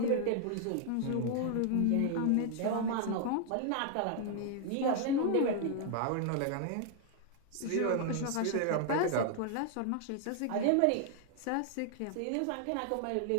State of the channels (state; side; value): different; both; correlation 0.00